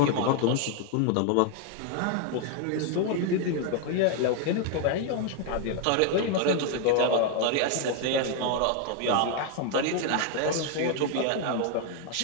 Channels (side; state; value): both; different; correlation 0.01